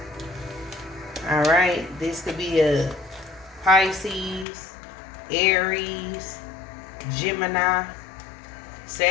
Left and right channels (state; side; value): drops out; right; at 4.5 s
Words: Alright, this could be a Pisces, Aries, Gemini,